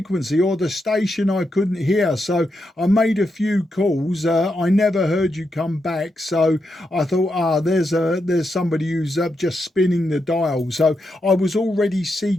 or the station I couldn't hear, so I made a few calls. I never heard you come back, so I thought, there's somebody who's just spinning the dial. So I was already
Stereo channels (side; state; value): both; normal; correlation 0.84